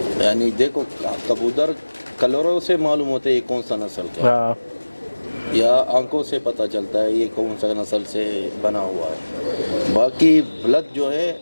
यानी देखो कबूतर कलरों से मालूम होता है ये कौन सा नस्ल का है, या आंखों से पता चलता है ये कौन सा नस्ल से बना हुआ है। बाकी ब्लड जो है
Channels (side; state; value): both; inverted; correlation -1.00